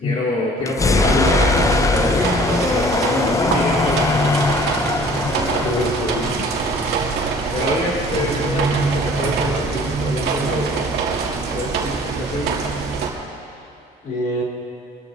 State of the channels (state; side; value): normal; both; correlation 0.51